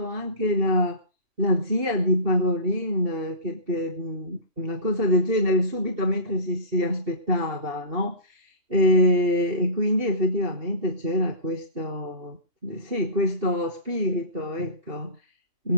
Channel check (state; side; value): late; left; 2.7 ms